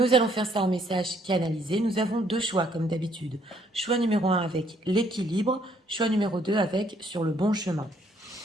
allons faire ça en message canalisé. Nous avons deux choix comme d'habitude. Choix numéro 1 avec l'équilibre, choix numéro 2 avec sur le bon chemin.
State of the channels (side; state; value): both; normal; correlation 0.67